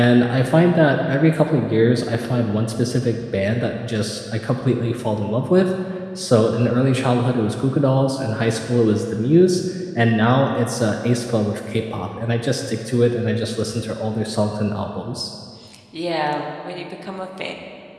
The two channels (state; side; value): identical; both; correlation 1.00